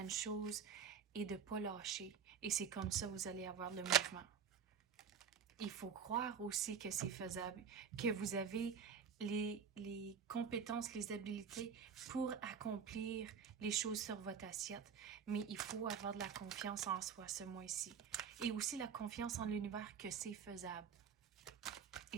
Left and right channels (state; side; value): quieter; left; 7.0 dB